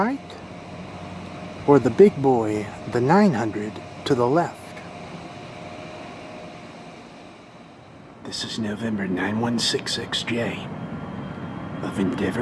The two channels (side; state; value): both; identical; correlation 1.00